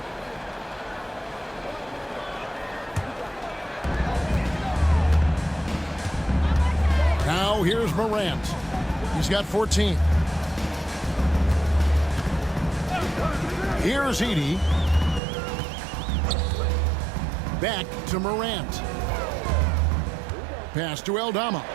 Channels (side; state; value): left; drops out; at 15.2 s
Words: Now here's Morant. He's got 14. Here's Edey. Back to Morant. Pass to Dalla.